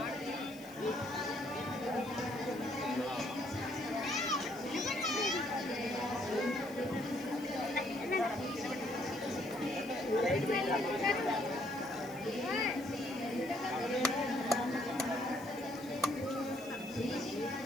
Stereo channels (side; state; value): left; noise; hiss, 20 dB below the sound